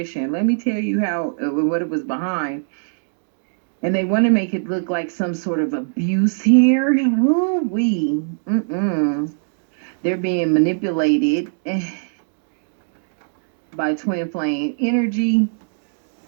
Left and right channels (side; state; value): left; silent; digital silence